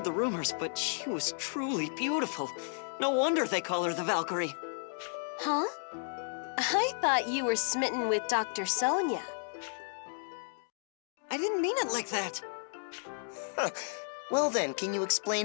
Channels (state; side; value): silent; right; digital silence